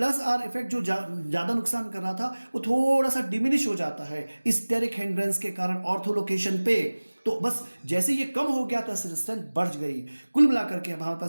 आर इफेक्ट जो ज्यादा नुकसान कर रहा था वो थोड़ा सा डिमिनिश हो जाता है स्टेरिक हिंड्रेंस के कारण ऑर्थो लोकेशन पे। तो बस जैसे ये कम हो गया तो एसिड स्ट्रेंथ बढ़ गई। कुल मिलाकर के हमारे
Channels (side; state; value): both; inverted; correlation -1.00